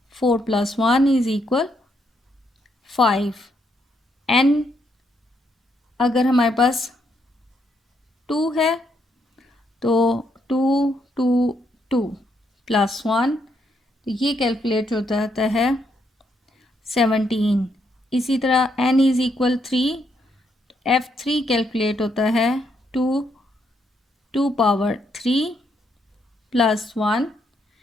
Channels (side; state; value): both; normal; correlation 0.76